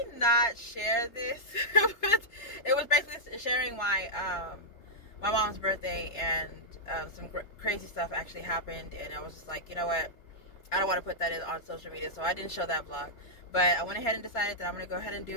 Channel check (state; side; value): late; right; 3.2 ms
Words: not share this. It was basically sharing my mom's birthday, and some crazy stuff actually happened, and I was just like, you know what? I don't want to put that on social media, so I didn't show that vlog. But I went ahead and decided that I'm going to go ahead and